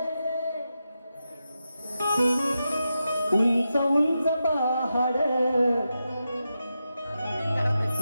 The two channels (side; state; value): both; inverted; correlation -0.89